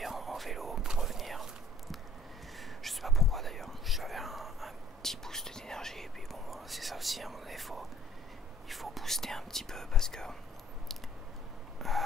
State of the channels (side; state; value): both; normal; correlation 0.56